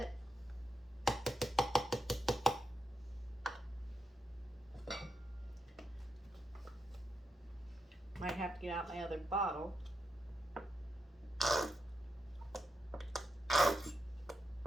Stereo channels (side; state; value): both; normal; correlation 0.85